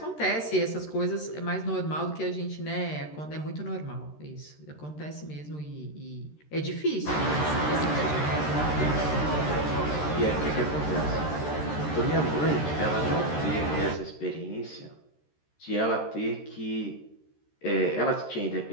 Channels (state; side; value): late; right; 13 ms